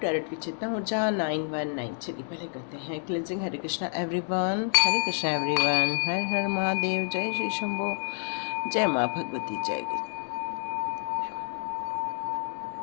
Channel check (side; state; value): right; silent; 59 dB below the other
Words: with Chetna Urja 919। चलिए पहले करते हैं cleansing. Hare Krishna everyone, Hare Krishna everyone, Har Har Mahadev, जय श्री शंभो, जय माँ भगवती, जय guru.